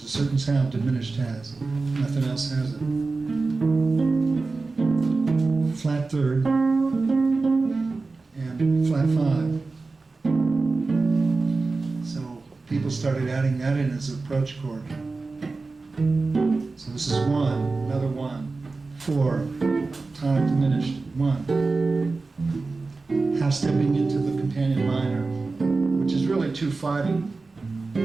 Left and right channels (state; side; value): quieter; left; 3.8 dB